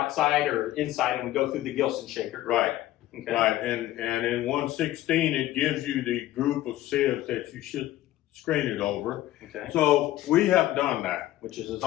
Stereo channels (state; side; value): quieter; right; 14.8 dB